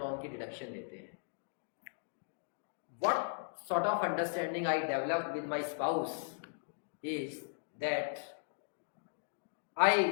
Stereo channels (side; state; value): right; silent; digital silence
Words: की डिडक्शन लेते हैं. What sort of understanding I develop with my spouse is that I